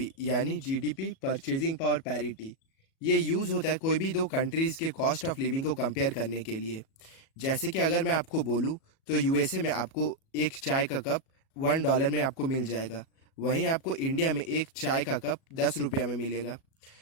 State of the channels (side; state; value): right; late; 37 ms